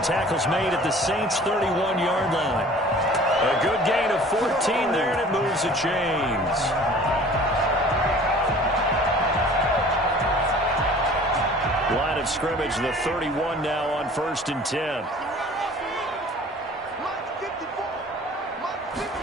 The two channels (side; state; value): both; normal; correlation 0.47